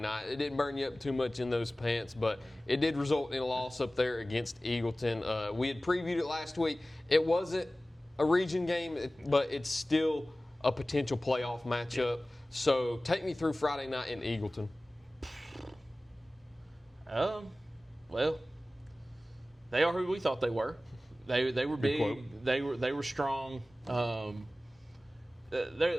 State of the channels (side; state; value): both; normal; correlation 0.97